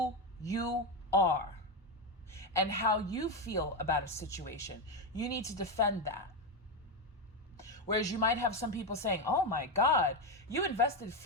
you are and how you feel about a situation. You need to defend that. Whereas you might have some people saying, oh my God, you invested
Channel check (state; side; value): normal; both; correlation 0.10